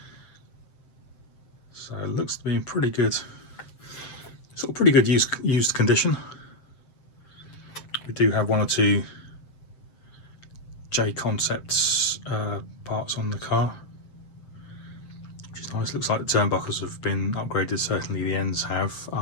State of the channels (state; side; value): late; right; 7.7 ms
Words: So it looks to be in pretty good used condition. We do have one or two J Concepts parts on the car, which is nice. Looks like the turnbuckles have been upgraded. Certainly the ends have.